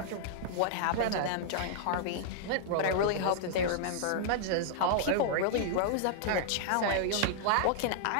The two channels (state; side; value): different; both; correlation -0.01